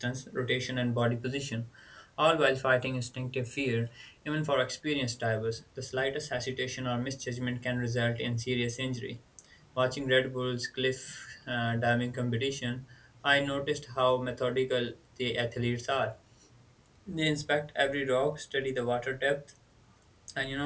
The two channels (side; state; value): both; identical; correlation 1.00